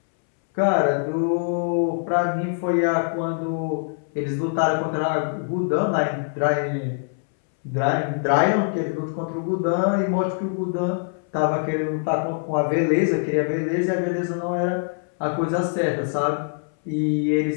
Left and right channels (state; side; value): silent; right; 63 dB below the other